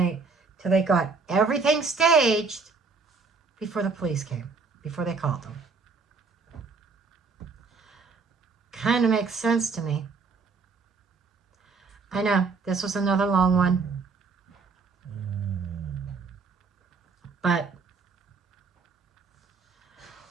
Till they got everything staged before the police came, before they called them. Kind of makes sense to me. I know, this was another long one. But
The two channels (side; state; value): left; quieter; 4.6 dB